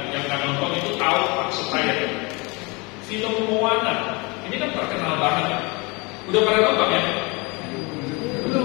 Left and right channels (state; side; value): quieter; right; 27.4 dB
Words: nonton itu tahu maksud saya. Film Moana ini kan terkenal banget. Udah pada nonton ya?